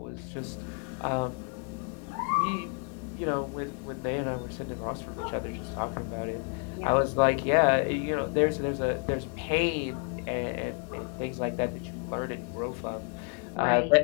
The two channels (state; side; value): quieter; right; 39.7 dB